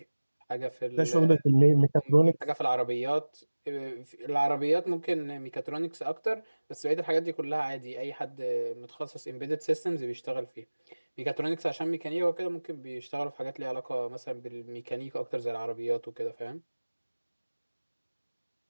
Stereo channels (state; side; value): inverted; both; correlation -1.00